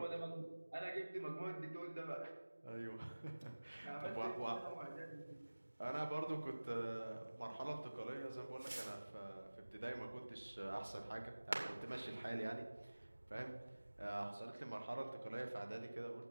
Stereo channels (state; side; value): inverted; both; correlation -1.00